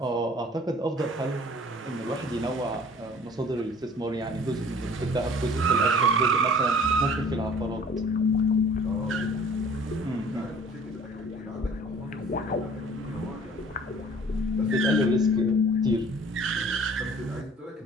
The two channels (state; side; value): normal; both; correlation 0.50